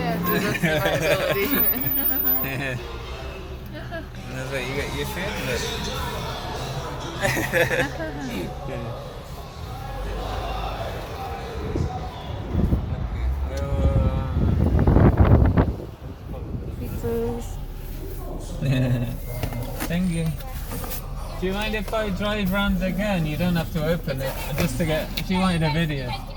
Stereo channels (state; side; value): identical; both; correlation 1.00